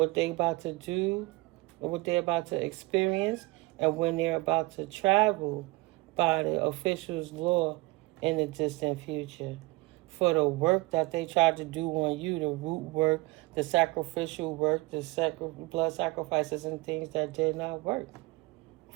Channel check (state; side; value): quieter; left; 23.3 dB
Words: they about to do or what they're about to experience, and when they're about to travel by the officials' law in the distant future. For the work that they tried to do on you, the root work, the sacrificial work, the blood sacrifices and things that did not work.